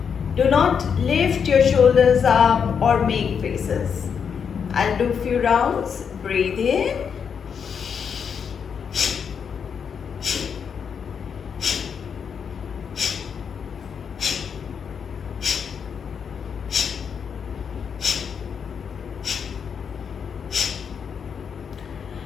Do not lift your shoulders up or make faces. I'll do a few rounds. Breathe in.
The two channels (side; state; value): right; quieter; 6.9 dB